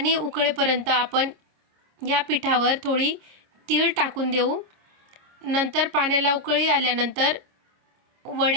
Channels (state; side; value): late; left; 26 ms